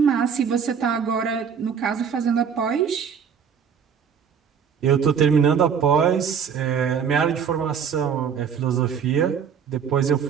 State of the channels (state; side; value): quieter; left; 7.2 dB